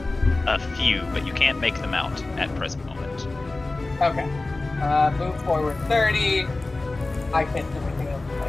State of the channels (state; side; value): quieter; right; 3.2 dB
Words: a few, but you can't make them out at present moment. Okay. Move forward 30. I can't do anything else with